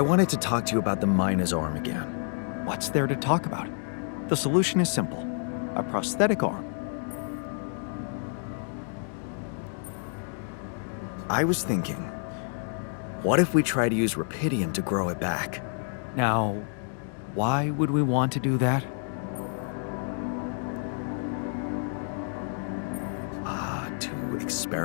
to talk to you about the Mina's arm again. What's there to talk about? The solution is simple. A prosthetic arm. I was thinking, what if we try to use rupidium to grow it back? Now, why would we want to do that? To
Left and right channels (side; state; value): right; silent; 59 dB below the other